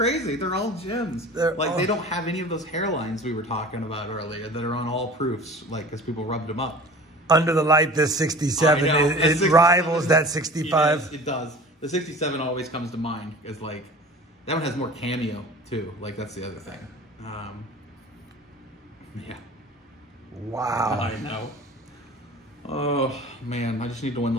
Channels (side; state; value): both; normal; correlation 0.41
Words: They're all gems. They don't have any of those hairlines we were talking about earlier that are on all proofs, like because people rubbed them up. Under the light, this 67, it rivals that 65. Yes, it does. The 67 always comes to mind as like, that one has more cameo too. Like that's the other thing. Yeah. Wow. I know. Oh man, I just need to win